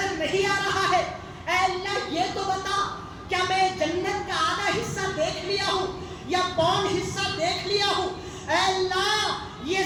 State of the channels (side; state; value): both; identical; correlation 1.00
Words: نہیں آ رہا ہے. اے اللہ یہ تو بتا کیا میں جنت کا آدھا حصہ دیکھ لیا ہوں یا پون حصہ دیکھ لیا ہوں. اے اللہ یہ